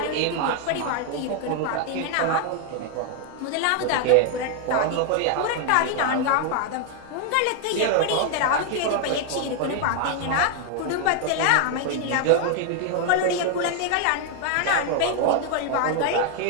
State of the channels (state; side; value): different; both; correlation 0.00